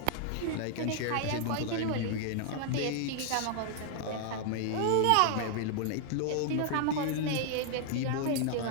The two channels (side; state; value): both; different; correlation 0.00